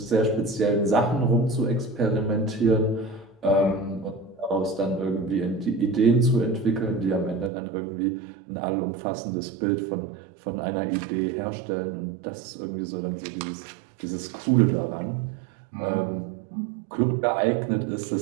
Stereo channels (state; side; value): drops out; left; at 7.5 s